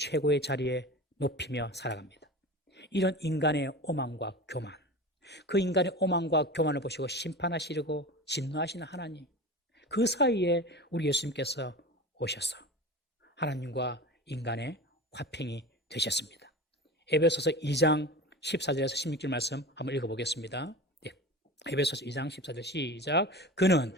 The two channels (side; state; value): both; normal; correlation 0.32